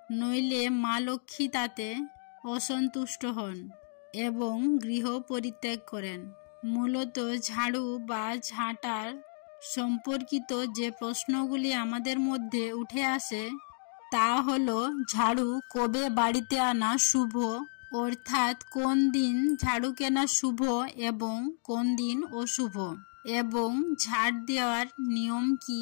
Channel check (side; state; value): right; silent; digital silence